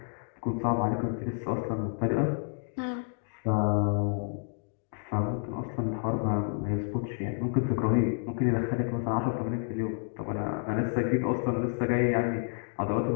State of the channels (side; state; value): right; silent; 58 dB below the other